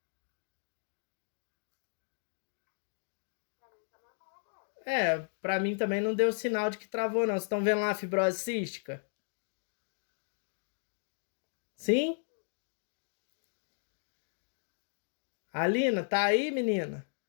Pra mim também não deu sinal de que travou, não. Vocês estão vendo lá a fibrose cística? Sim? Alina, tá aí, menina?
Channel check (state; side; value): silent; right; digital silence